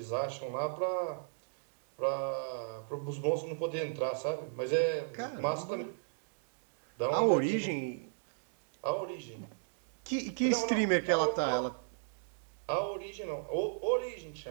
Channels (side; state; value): left; silent; digital silence